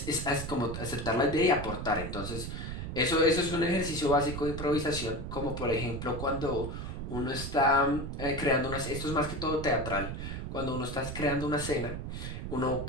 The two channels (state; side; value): noise; right; rumble, 6 dB below the sound